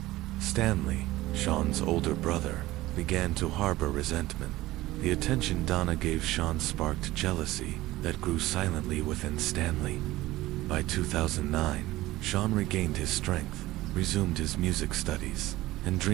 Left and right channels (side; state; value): left; quieter; 17.4 dB